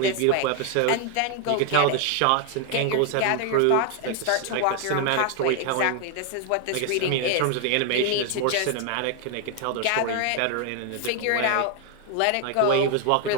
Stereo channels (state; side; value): different; both; correlation 0.00